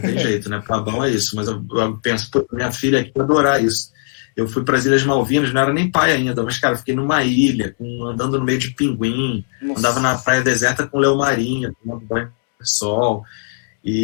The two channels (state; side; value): silent; right; 67 dB below the other